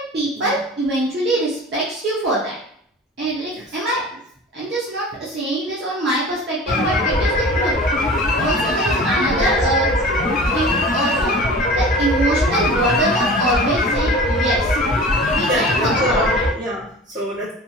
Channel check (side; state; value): both; normal; correlation 0.38